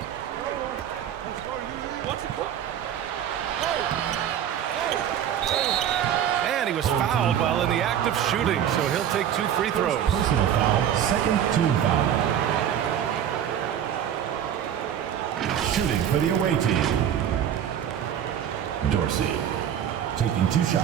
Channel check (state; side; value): quieter; left; 9.7 dB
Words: And he was fouled while in the act of shooting, so he'll take 2 free throws. Personal foul, second team foul. Shooting for the away team, Dorsey, taking 2